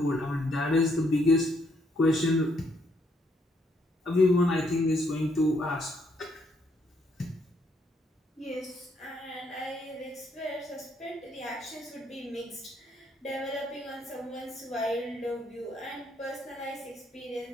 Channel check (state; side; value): normal; both; correlation 0.71